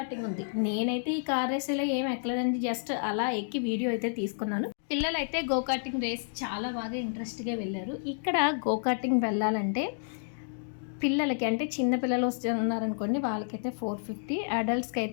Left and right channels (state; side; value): silent; right; digital silence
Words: ఉంది. నేనైతే ఈ కార్ రేసులో ఏమి ఎక్కలేదండి. జస్ట్ అలా ఎక్కి వీడియో అయితే తీసుకున్నాను. పిల్లలైతే గో కార్టింగ్ రేస్ చాలా బాగా ఇంట్రెస్ట్‌గా వెళ్ళారు. ఇక్కడ గో కార్టింగ్ వెళ్ళాలంటే పిల్లలకి అంటే చిన్న పిల్లలు ఉన్నారనుకోండి, వాళ్ళకైతే 450, అడల్ట్స్‌కి